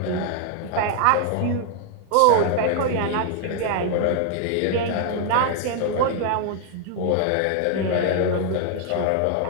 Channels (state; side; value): different; both; correlation 0.00